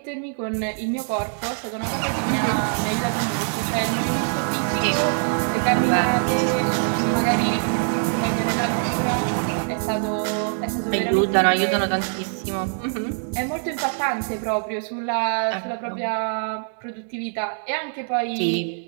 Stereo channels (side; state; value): left; silent; 63 dB below the other